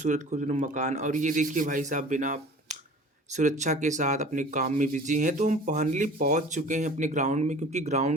मकान और ये देखिए भाई साहब बिना सुरक्षा के साथ अपने काम में बिज़ी हैं। तो हम फाइनली पहुँच चुके हैं अपने ग्राउंड में क्योंकि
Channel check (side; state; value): both; normal; correlation 0.44